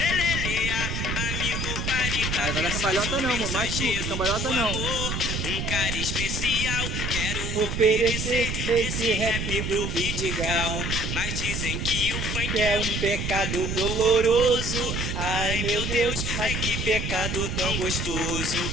amigo, pare pra Ai, vai dar cambalhota não, amor. Machuca, cambalhota não. Um cara especial, quero Oferecer esse rap do Vidigal. Mas dizem que o funk Que é um pecado doloroso. Ai, meu Deus, mas que pecado tão gostoso.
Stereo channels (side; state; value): right; noise; rumble, 2 dB below the sound